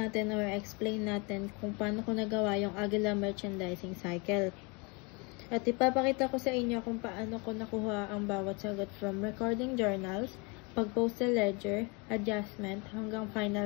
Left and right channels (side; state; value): right; quieter; 30.2 dB